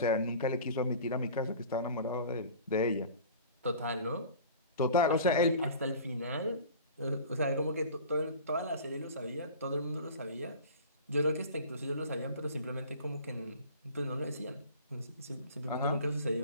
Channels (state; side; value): inverted; both; correlation -0.42